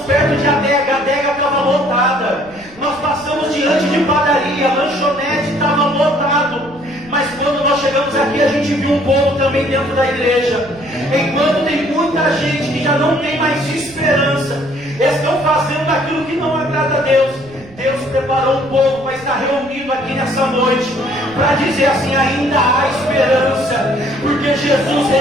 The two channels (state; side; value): noise; right; rumble, 22 dB below the sound